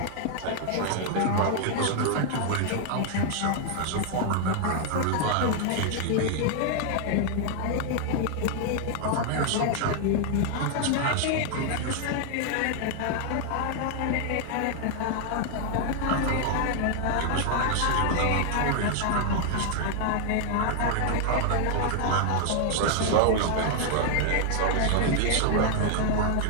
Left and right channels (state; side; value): different; both; correlation 0.00